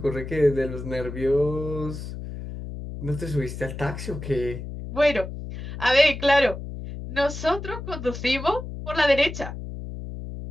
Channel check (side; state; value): left; noise; hum, 9 dB below the sound